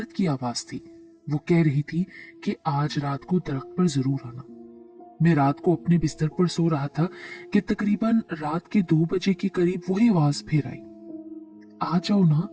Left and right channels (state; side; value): identical; both; correlation 1.00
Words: की आवाज थी, वो कह रही थी कि आज रात को दरख्त पर जरूर आना। मैं रात को अपने बिस्तर पर सो रहा था कि तकरीबन रात के 2 बजे के करीब वही आवाज फिर आई, आ जाओ ना,